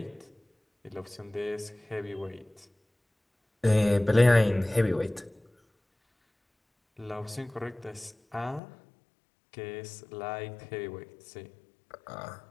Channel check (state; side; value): drops out; right; at 8.6 s